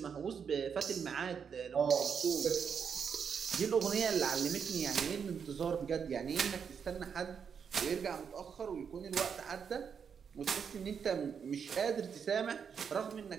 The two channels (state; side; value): quieter; left; 6.9 dB